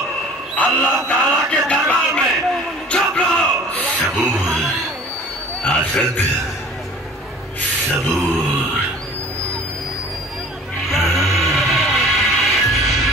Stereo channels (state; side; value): normal; both; correlation 0.46